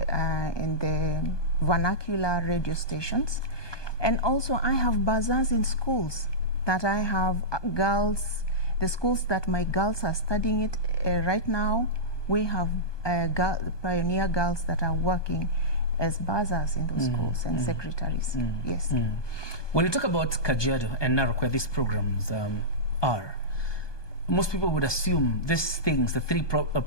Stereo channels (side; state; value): right; late; 1.2 ms